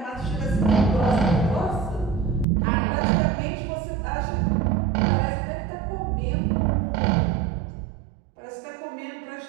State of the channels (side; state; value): left; drops out; at 2.5 s